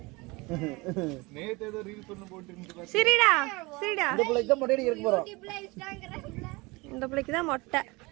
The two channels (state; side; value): quieter; left; 24.5 dB